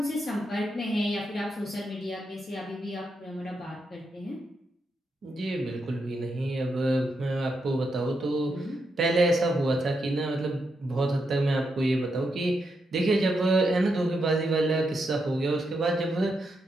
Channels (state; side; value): normal; both; correlation 0.83